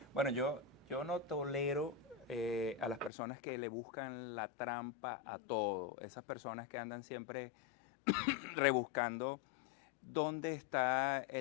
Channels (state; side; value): drops out; right; at 3.1 s